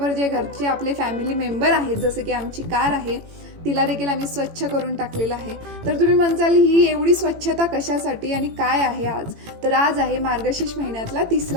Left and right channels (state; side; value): late; left; 18 ms